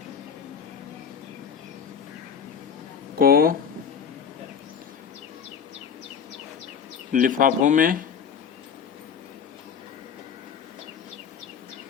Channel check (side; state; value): right; quieter; 7.0 dB